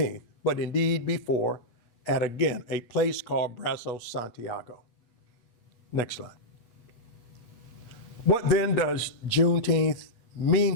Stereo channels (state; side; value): late; right; 8.4 ms